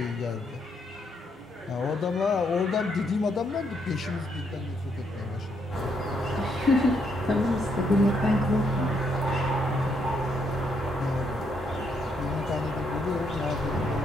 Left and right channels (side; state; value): both; normal; correlation 0.75